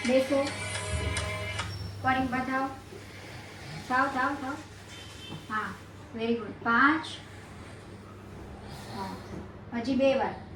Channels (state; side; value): identical; both; correlation 1.00